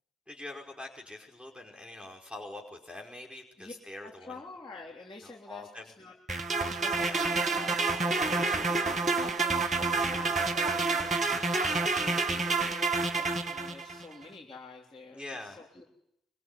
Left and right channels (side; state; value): left; quieter; 3.1 dB